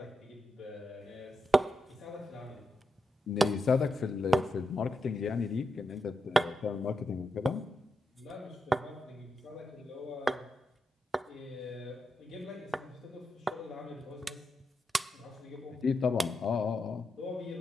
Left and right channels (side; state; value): both; normal; correlation 0.86